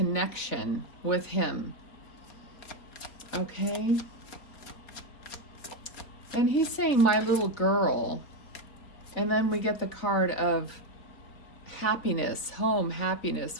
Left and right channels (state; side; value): late; right; 4.0 ms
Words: with him. Okay? And he's saying, my little girl. And then we get the card of happiness, home,